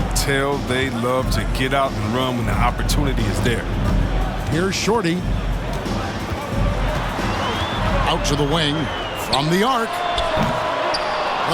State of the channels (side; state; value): both; identical; correlation 1.00